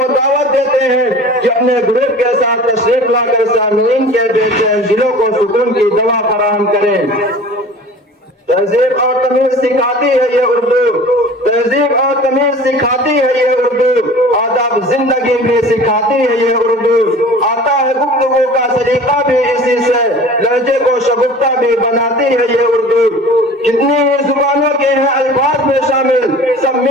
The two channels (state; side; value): normal; both; correlation 0.42